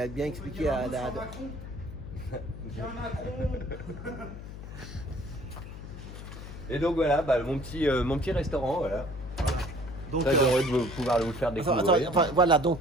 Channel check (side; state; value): left; noise; hum, 11 dB below the sound